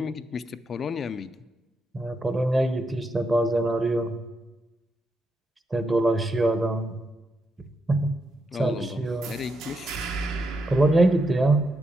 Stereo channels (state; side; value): normal; both; correlation 0.82